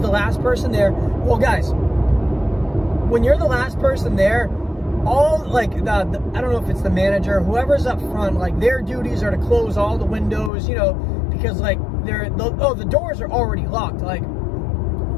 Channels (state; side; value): drops out; right; at 10.5 s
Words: last person there. Well, guys, when you're the last person there, all, like, I don't know if it's the manager, whoever's up front, like, their duties are to close all the windows, because, like, the doors are already locked. Like,